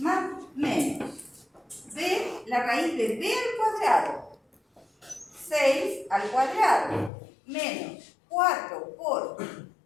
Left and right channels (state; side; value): drops out; right; at 7.1 s